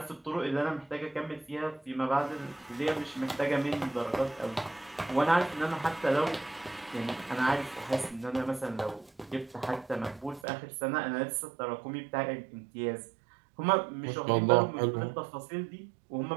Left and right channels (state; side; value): drops out; left; at 10.4 s